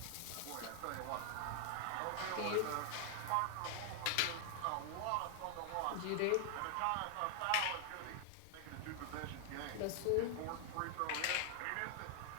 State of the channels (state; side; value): different; both; correlation 0.00